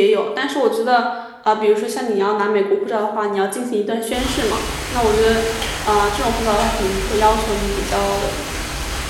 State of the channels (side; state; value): both; identical; correlation 1.00